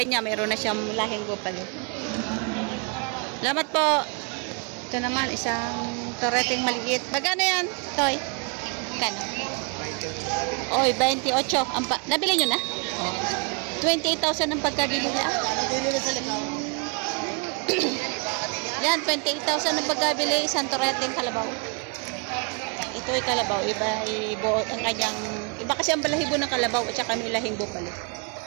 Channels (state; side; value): quieter; left; 35.9 dB